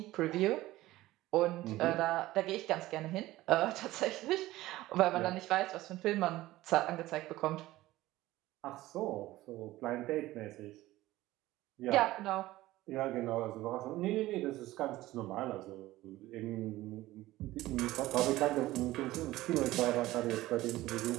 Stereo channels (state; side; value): quieter; left; 16.9 dB